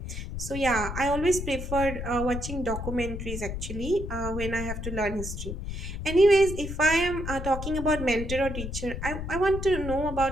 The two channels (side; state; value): left; noise; rumble, 6 dB below the sound